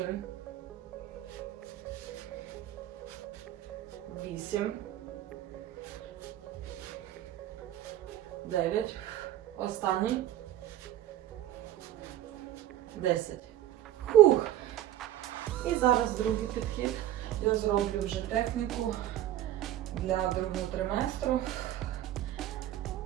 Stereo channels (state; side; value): quieter; left; 12.9 dB